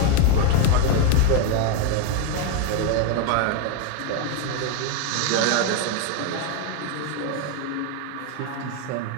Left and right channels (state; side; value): different; both; correlation 0.01